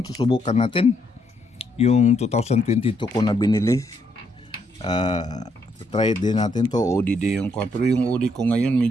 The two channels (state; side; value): normal; both; correlation 0.74